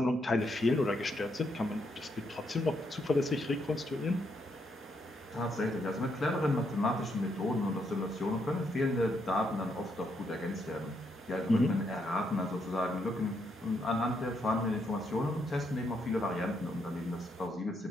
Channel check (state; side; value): normal; both; correlation 0.77